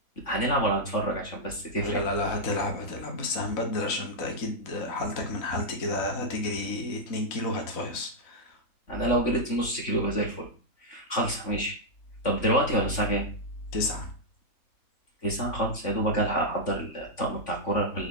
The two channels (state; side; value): late; right; 3.5 ms